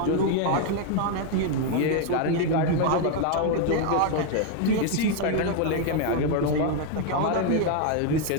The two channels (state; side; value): different; both; correlation 0.01